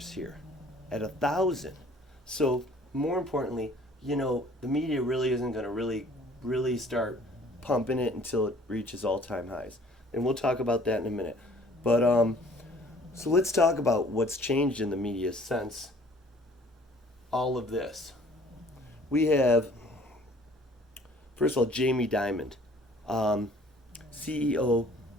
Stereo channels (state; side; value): normal; both; correlation 0.55